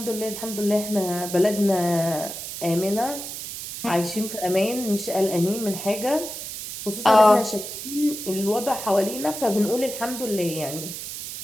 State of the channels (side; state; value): right; noise; hiss, 8 dB below the sound